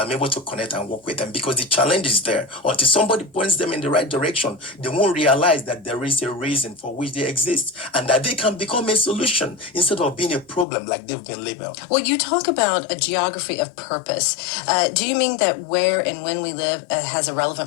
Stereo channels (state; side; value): drops out; right; at 10.7 s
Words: able to connect and work with them because the challenge is there. Until somebody points them in the right direction, they won't realize that there is a reason for which they exist and that they can become a solution instead of being a problem like they've been labeled. Well, you talk about a geography of purpose. Do you mean that where and when we live has a